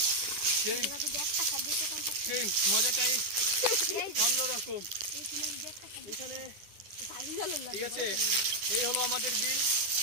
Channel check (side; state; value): left; late; 9.9 ms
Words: সেই মজাটাই অন্যরকম। এখানে ঠিক আছে, এই হলো আমাদের বিল,